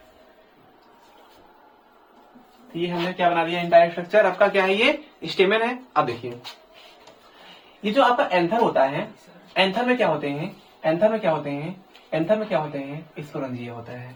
ये हमने क्या बना दिया? एंटायर स्ट्रक्चर आपका क्या है? ये स्टेमन है। अब देखिए ये जो आपका एंथर होता है, एंथर में क्या होते हैं? स्पोरेंजिया होता है।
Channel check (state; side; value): identical; both; correlation 1.00